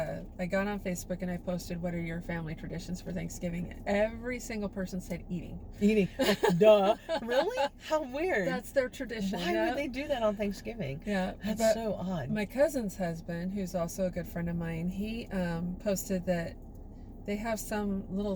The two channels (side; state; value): both; identical; correlation 1.00